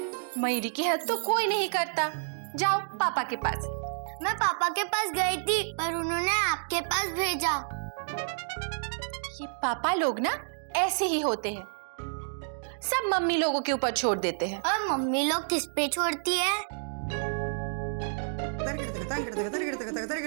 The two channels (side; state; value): left; silent; digital silence